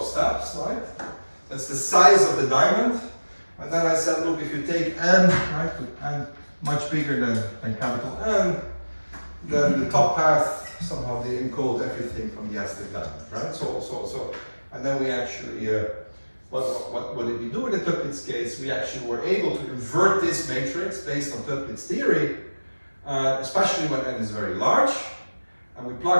steps, right? That's the size of the diamond. And then I said, look, if you take n, right, with n much bigger than capital N, then the top path, somehow they encode everything from the Aztec Diamond, right? So, and then we actually, what did we do in the Toeplitz case? We actually were able to invert this matrix based on Toeplitz theory, especially when n is very large. And we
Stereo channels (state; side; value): inverted; both; correlation -1.00